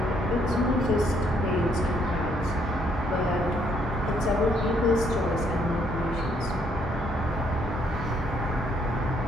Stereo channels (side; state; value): both; normal; correlation 0.69